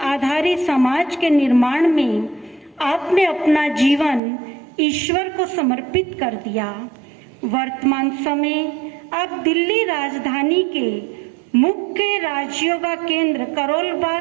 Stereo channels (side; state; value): left; drops out; at 4.2 s